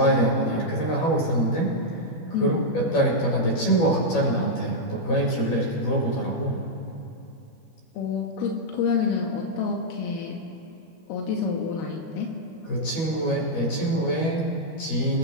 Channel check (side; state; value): right; late; 12 ms